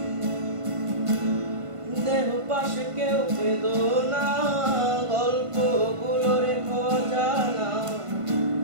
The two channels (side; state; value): left; late; 1.5 ms